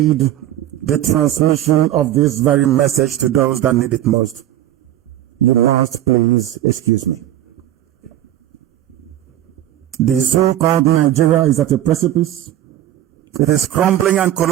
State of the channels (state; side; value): quieter; left; 12.6 dB